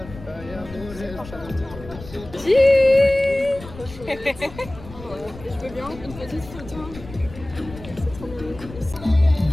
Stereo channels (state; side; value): noise; left; rumble, 15 dB below the sound